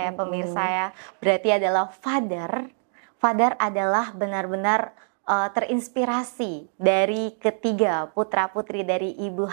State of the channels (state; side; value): silent; left; digital silence